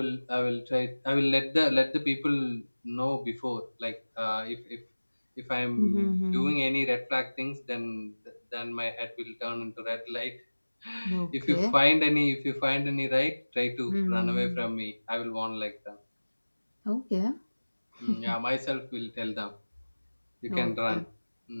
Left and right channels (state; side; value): inverted; both; correlation -1.00